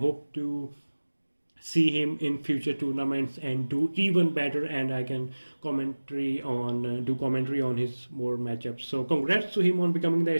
to see him in future tournaments and do even better, and I can do commentary on his more matchups. So congrats to him on becoming the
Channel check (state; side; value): inverted; both; correlation -1.00